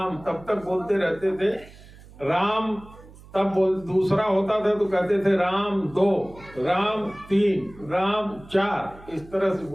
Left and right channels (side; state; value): right; noise; hum, 21 dB below the sound